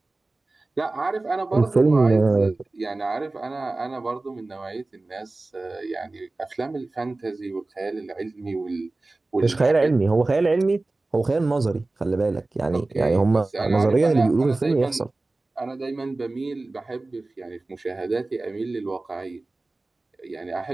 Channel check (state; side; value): quieter; left; 3.2 dB